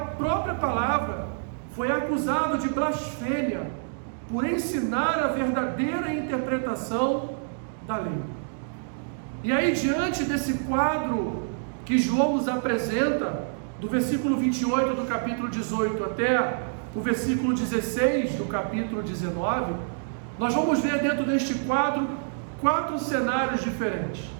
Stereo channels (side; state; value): left; silent; digital silence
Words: palavra, foi acusado de blasfêmia por ensinar a verdadeira interpretação da lei. E aí, diante desse quadro que João nos apresenta, do versículo 28 do capítulo 18 até o versículo 16 do capítulo 19, nós vamos ver dentro deste quadro 4 cenários diferentes.